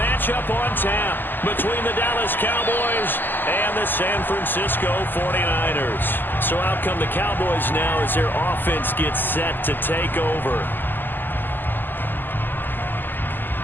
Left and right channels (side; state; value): right; late; 0.091 ms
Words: on tap between the Dallas Cowboys and the San Francisco 49ers. So out come the Cowboys now as their offense gets set to take over.